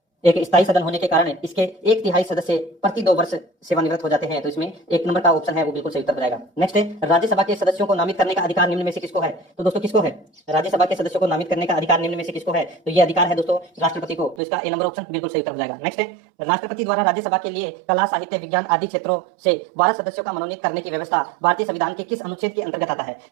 1/3 सदस्य प्रति 2 वर्ष सेवानिवृत्त हो जाते हैं, तो इसमें एक नंबर का ऑप्शन है वो बिल्कुल सही उत्तर हो जाएगा। नेक्स्ट है, राज्यसभा के सदस्यों को नामित करने का अधिकार निम्न में से किसको है? तो दोस्तों किसको है? राज्यसभा के सदस्यों को नामित करने का अधिकार निम्न में से किसको है? तो ये अधिकार है दोस्तों राष्ट्रपति को, तो इसका ए नंबर ऑप्शन बिल्कुल सही उत्तर हो जाएगा। नेक्स्ट है, राष्ट्रपति द्वारा राज्यसभा के लिए कला, साहित्य, विज्ञान आदि क्षेत्रों से 12 सदस्यों का मनोनीत करने की व्यवस्था भारतीय संविधान के किस अनुच्छेद के अंतर्गत आता है?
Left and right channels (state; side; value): drops out; left; at 14.4 s